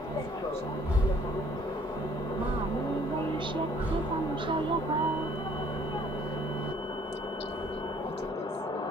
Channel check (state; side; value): normal; both; correlation 0.59